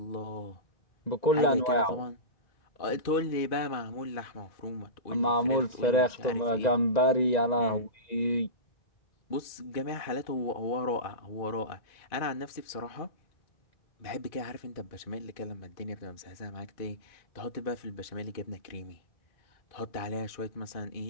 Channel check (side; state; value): right; late; 2.5 ms